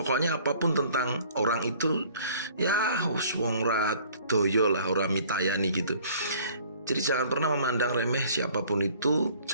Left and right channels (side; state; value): both; inverted; correlation -0.54